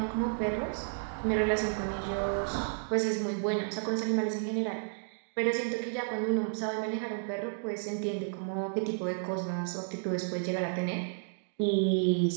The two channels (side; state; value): left; silent; digital silence